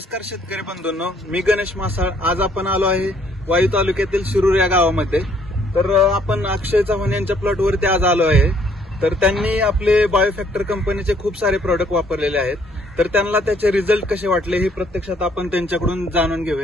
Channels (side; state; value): both; normal; correlation 0.64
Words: शेतकरी बंधूंनो, मी गणेश मासाळ. आज आपण आलो आहे वाई तालुक्यातील शिरूर या गावामध्ये. तर आपण अक्षय चव्हाण यांच्या प्लॉटवरती आज आलो आहे. तर त्यांनी आपले बायोफॅक्टर कंपनीचे खूप सारे प्रोडक्ट वापरलेले आहेत. तर त्यांना त्याचे रिझल्ट कसे वाटले हे प्रत्यक्षात आपण त्यांच्याकडून जाणून